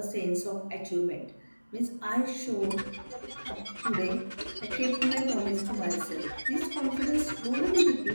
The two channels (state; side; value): inverted; both; correlation -1.00